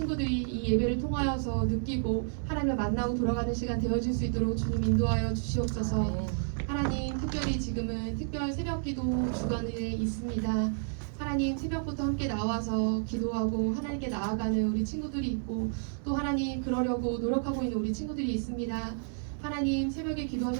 이 예배를 통하여서 느끼고 하나님을 만나고 돌아가는 시간 되어질 수 있도록 주님 인도하여 주시옵소서. 하나님, 특별히 지금은 특별 새벽기도 주간에 있습니다. 하나님, 새벽부터 함께 나와서 기도하고 하나님께 나아가는 우리 친구들이 있고 또 하나님 그러려고 노력하고 있는 우리 친구들이 있습니다. 하나님 새벽에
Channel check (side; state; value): left; silent; 57 dB below the other